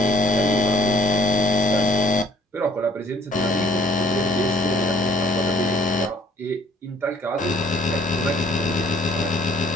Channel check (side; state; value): both; normal; correlation 0.58